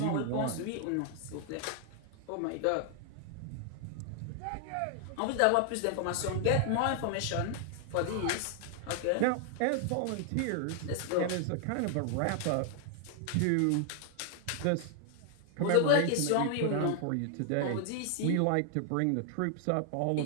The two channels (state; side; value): different; both; correlation 0.00